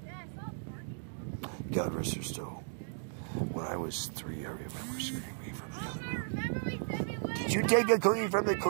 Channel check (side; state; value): left; silent; digital silence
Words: God rest her soul. When I was 3, I remember screaming from the other room, "Did you take a cookie from the